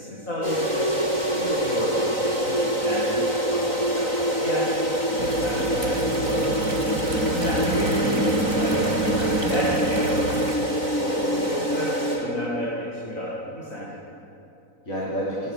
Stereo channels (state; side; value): late; right; 3.9 ms